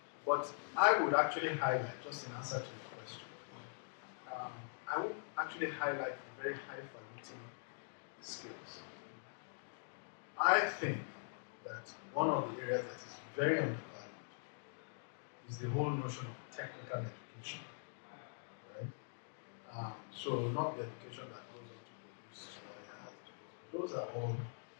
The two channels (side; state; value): right; silent; digital silence